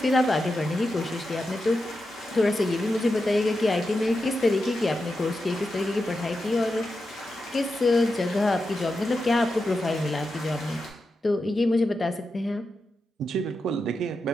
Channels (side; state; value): both; normal; correlation 0.89